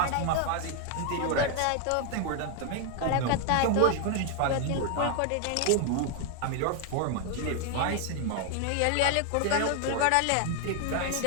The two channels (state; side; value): different; both; correlation 0.00